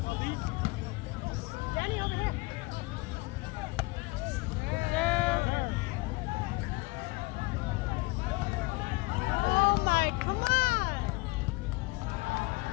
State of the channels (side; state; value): right; quieter; 24.1 dB